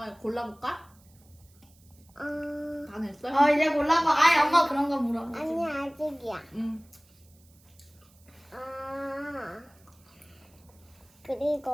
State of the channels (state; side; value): noise; right; hiss, 30 dB below the sound